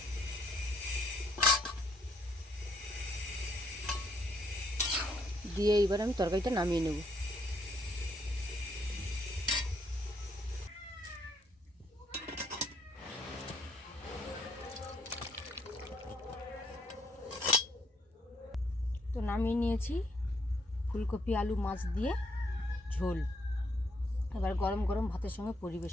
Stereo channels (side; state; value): both; normal; correlation 0.71